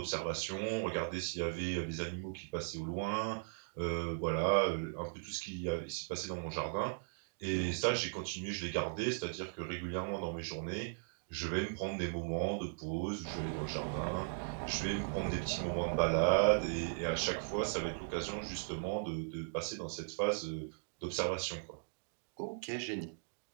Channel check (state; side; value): silent; left; digital silence